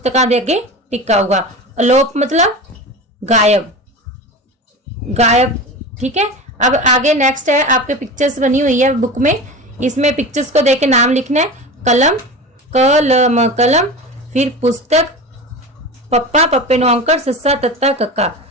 दे अगे टिक आऊगा। अलोप मतलब गायब, गायब। ठीक है, अब आगे नेक्स्ट है, आपके पिक्चर्स बनी हुई है बुक में, इसमें पिक्चर्स को देख के नाम लिखना है। कलम, कलम, कलम। फिर पुस्तक, पप्पा, पप्पे नो अंकर, सस्सा, तत्ता, कक्का।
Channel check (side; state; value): both; normal; correlation 0.29